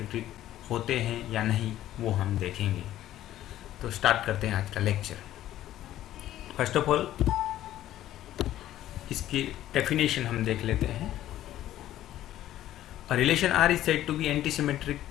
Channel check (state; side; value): quieter; right; 13.2 dB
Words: होते हैं या नहीं, वो हम देखेंगे। तो स्टार्ट करते हैं आज का लेक्चर। फर्स्ट ऑफ ऑल इसकी डेफिनेशन हम देख लेते हैं। A relation R is said to be anti symmetric